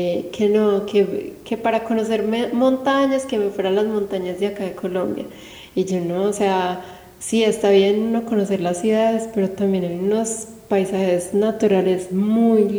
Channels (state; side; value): identical; both; correlation 1.00